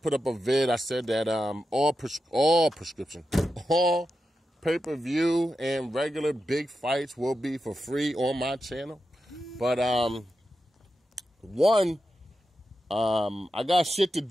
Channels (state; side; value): normal; both; correlation 0.90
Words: put up a vid. I said that all pay-per-view and regular big fights will be for free on my channel. But I got shit to